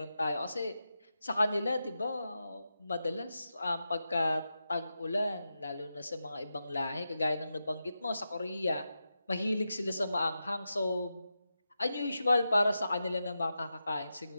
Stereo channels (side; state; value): both; inverted; correlation -0.90